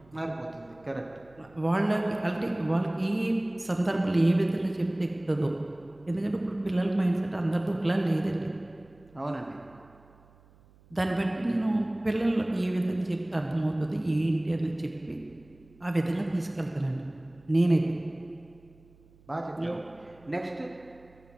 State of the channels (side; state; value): right; noise; hum, 28 dB below the sound